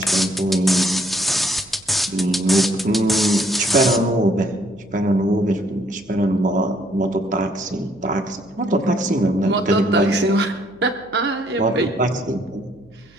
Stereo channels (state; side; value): noise; right; hum, 30 dB below the sound